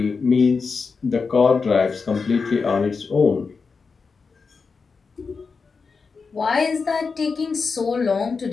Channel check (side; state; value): right; quieter; 4.9 dB